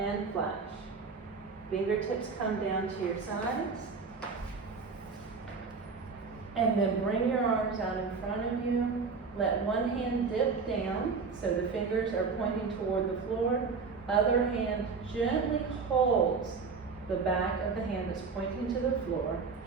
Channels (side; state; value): left; quieter; 4.9 dB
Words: flash. Fingertips come down to your sides. And then bring your arms out in front of you. Let one hand dip down so the fingers are pointing toward the floor. Other hand gently holds the back of the hand that's pointing to the floor.